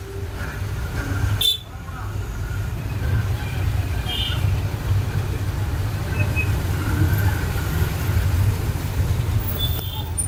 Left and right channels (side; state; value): both; identical; correlation 1.00